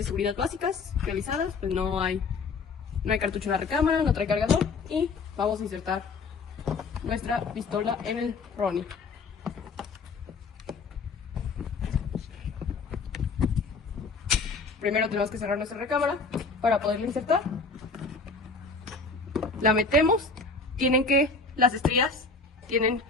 seguridad básicas realizadas, pues no hay cartucho en la recámara, no trae cargador y vamos a insertar nuestra pistola en el Ronnie. Primero tenemos que cerrar nuestra recámara para poderla insertar. La metemos, las estrías tienen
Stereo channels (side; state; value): right; quieter; 4.2 dB